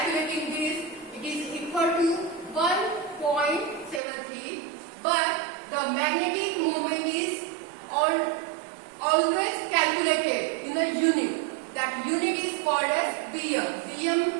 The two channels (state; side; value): drops out; left; at 4.0 s